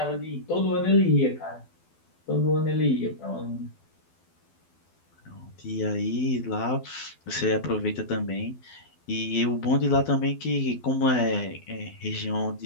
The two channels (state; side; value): late; right; 12 ms